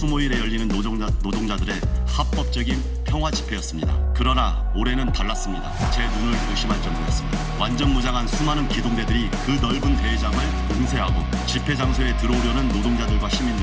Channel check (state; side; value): identical; both; correlation 1.00